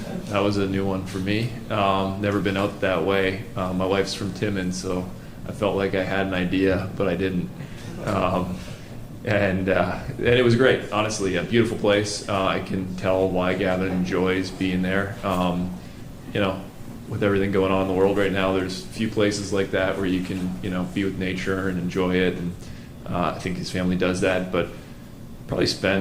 that was a new one for me. Never been out that way. My wife's from Timmins, so I felt like I had an idea, but I didn't. And it was great, honestly. A beautiful place. I can tell why Gavin enjoys being there. With everything going on in the world right now, there's few places like that where you can be with nature and enjoy it. And I think his family does that, but probably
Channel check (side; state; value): both; identical; correlation 1.00